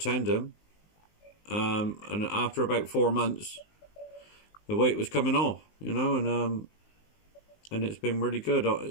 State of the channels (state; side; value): late; right; 19 ms